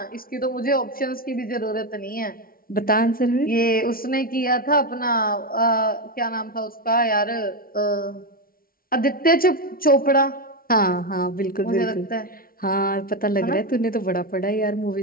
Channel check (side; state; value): right; late; 0.43 ms